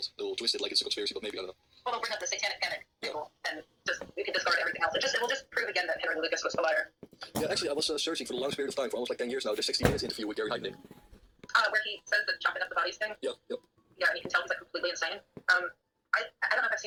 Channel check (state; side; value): identical; both; correlation 1.00